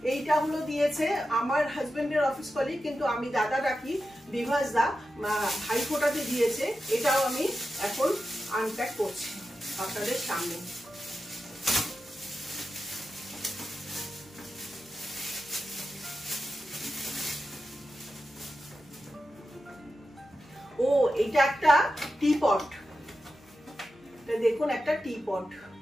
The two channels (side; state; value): left; noise; hum, 30 dB below the sound